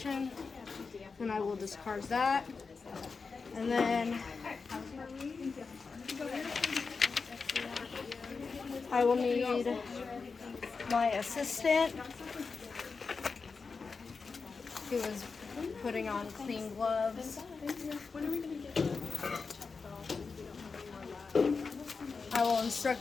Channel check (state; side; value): quieter; right; 4.7 dB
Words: And I will discard that. And then I will need my assistant, who is putting on clean gloves. I will